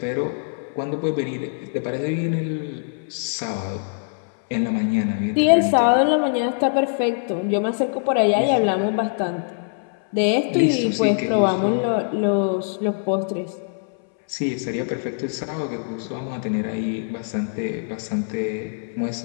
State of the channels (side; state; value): right; silent; 63 dB below the other